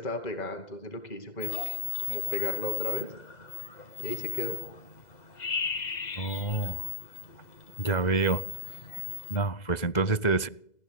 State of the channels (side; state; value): right; late; 2.0 ms